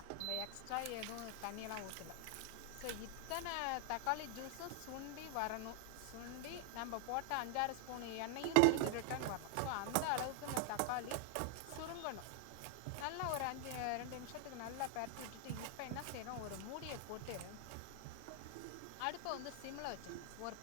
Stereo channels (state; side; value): different; both; correlation 0.00